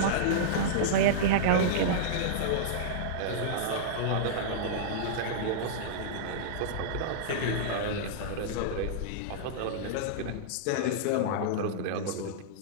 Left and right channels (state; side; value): different; both; correlation -0.03